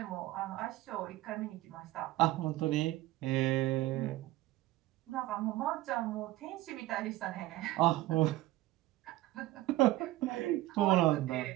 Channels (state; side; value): quieter; left; 16.7 dB